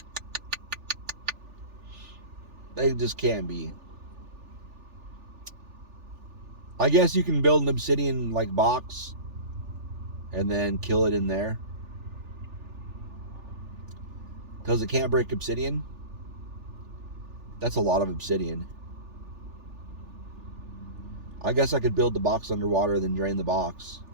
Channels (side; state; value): left; late; 3.4 ms